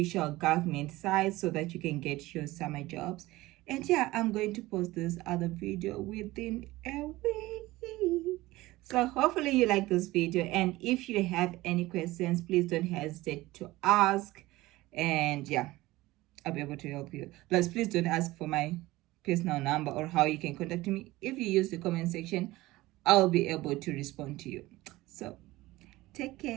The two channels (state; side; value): quieter; left; 18.6 dB